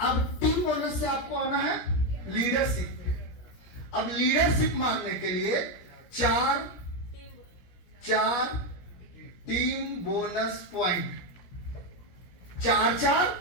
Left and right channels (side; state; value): right; late; 17 ms